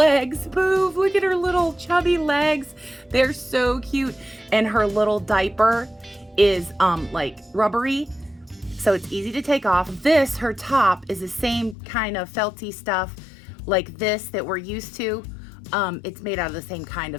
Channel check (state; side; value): drops out; right; at 11.8 s